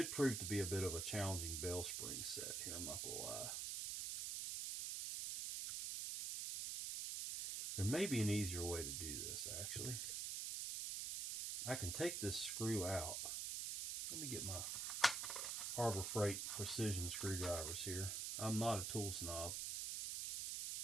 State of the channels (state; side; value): noise; right; hiss, 1 dB below the sound